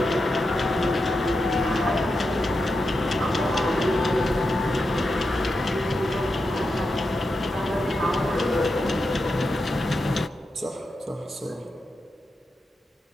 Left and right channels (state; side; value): normal; both; correlation 0.88